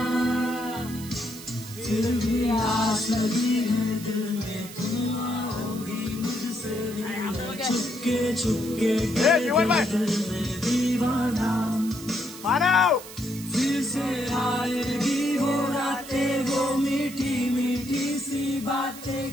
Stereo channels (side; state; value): right; noise; hiss, 14 dB below the sound